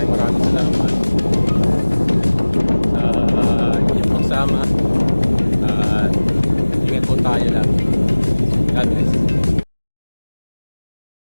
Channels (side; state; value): both; inverted; correlation -1.00